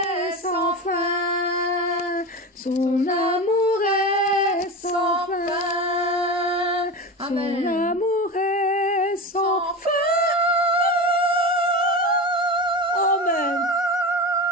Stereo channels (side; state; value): both; normal; correlation 0.25